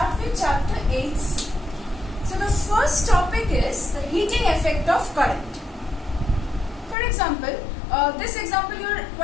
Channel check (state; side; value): drops out; right; at 7.0 s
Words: with chapter 8. So the first topic is the heating effect of current. For example, this example you are